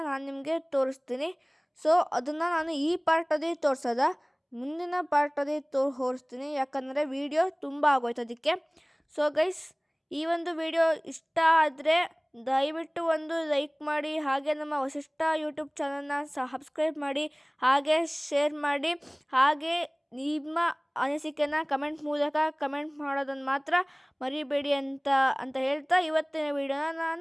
ನಾನು ನಿಮಗೆ ತೋರಿಸ್ತೀನಿ. ಸೊ ಅದನ್ನು ನಾನು ಈ ಪಾರ್ಟಲ್ಲಿ ತೋರಿಸೋದ, ಮುಂದಿನ ಪಾರ್ಟಲ್ಲಿ ತೋರಿಸ್ತೀನಿ, ಯಾಕಂದರೆ ವಿಡಿಯೋ ತುಂಬ ಆಗೋಯ್ತು ಅದಕ್ಕೆ. ಸೊ ಗೈಸ್, ಈ ಒಂದು ವಿಡಿಯೋ ಇಷ್ಟ ಆದರೆ ದಯವಿಟ್ಟು ಒಂದು ಲೈಕ್ ಮಾಡಿ, ಹಾಗೆ ನಮ್ಮ ವಸಿಷ್ಠ ಯೂಟ್ಯೂಬ್ ಚಾನಲ್ನ ಸಬ್ಸ್ಕ್ರೈಬ್ ಮಾಡಿ, ಹಾಗೆ ಶೇರ್ ಮಾಡಿ, ಹಾಗೆ ನಿಮ್ಮ ಅನಿಸಿಕೆನ ಕಮೆಂಟ್ ಮೂಲಕ ಕಮೆಂಟ್ ಮಾಡೋದನ್ನು ಮಾತ್ರ ಮರಿಬೇಡಿ ಅಂತ ಹೇಳ್ತಾ ಇವತ್ತಿನ ವಿಡಿಯೋನ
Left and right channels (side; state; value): both; identical; correlation 1.00